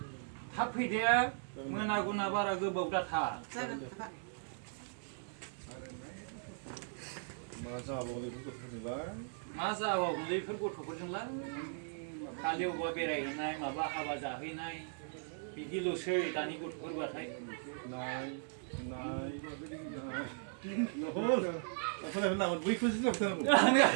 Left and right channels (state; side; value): silent; left; digital silence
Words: थाब फैदे मोना गुना बारा गोबाव दाथा जागोन हाबा मा जाबावगोनलै बेफोर गथ'फोरजोंलाय खालि अबेबा बेरायहैनाय माबा हाबा जाहैनाय बिदिल'सै दानि गथ'फोरबाथाय